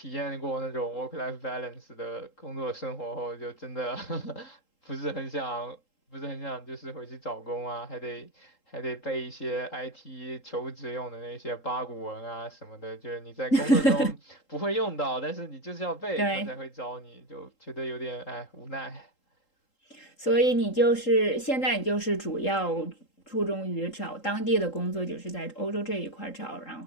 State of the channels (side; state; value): right; late; 3.8 ms